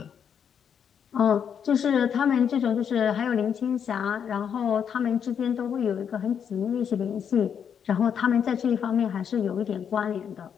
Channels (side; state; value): right; quieter; 7.8 dB